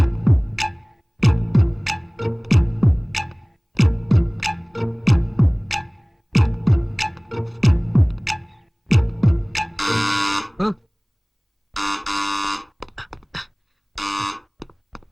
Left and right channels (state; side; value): identical; both; correlation 1.00